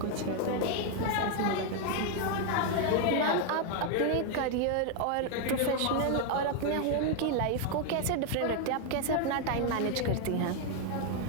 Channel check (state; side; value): different; both; correlation 0.00